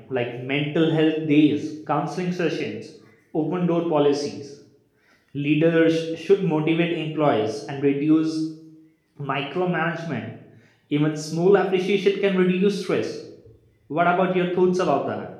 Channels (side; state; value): both; identical; correlation 1.00